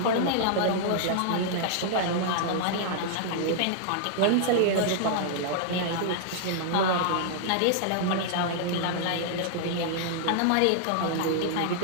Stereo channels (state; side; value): different; both; correlation -0.01